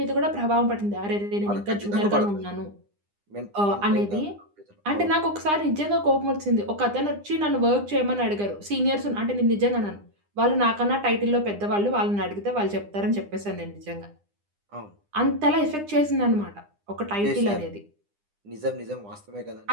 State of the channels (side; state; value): left; late; 9.9 ms